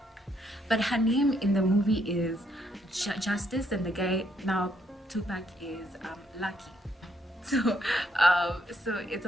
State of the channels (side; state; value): both; normal; correlation 0.73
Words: but her name in the movie is Justice, and the guy now Tupac is Lucky. So it's